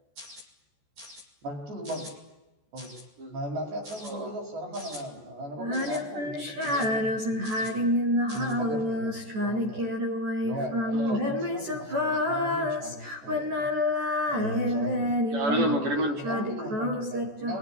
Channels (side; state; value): left; late; 14 ms